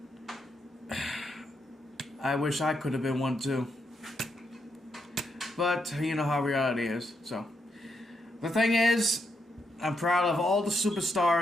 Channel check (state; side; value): normal; both; correlation 0.80